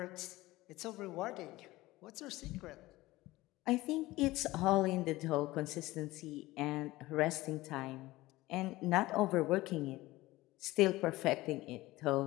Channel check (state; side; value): quieter; right; 18.6 dB